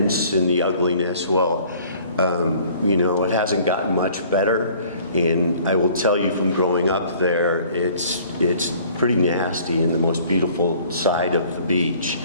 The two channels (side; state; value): both; inverted; correlation -0.54